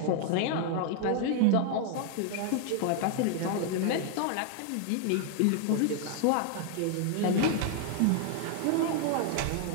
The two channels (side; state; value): both; different; correlation 0.00